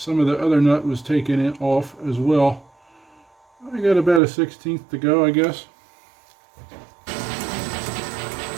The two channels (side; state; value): left; drops out; at 4.2 s